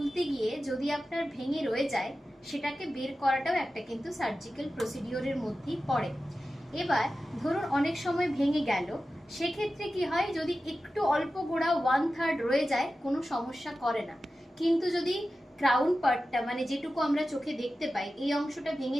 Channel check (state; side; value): normal; both; correlation 0.93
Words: গিয়ে যদি আপনার ভেঙে রয়ে যায়, সেটাকে বের করাটাও একটা কিন্তু সার্জিক্যাল প্রসিডিওরের মধ্যেই পড়ে। এবার ধরুন অনেক সময় ভেঙে গেল, সেক্ষেত্রে কি হয়, যদি একটু অল্প গোড়া 1/3 রয়ে যায় কোনো সমস্যা করে না। কিন্তু যদি ক্রাউন পার্টটা মানে যেটুকু আমরা চোখে দেখতে পাই এই অংশটা ভেঙে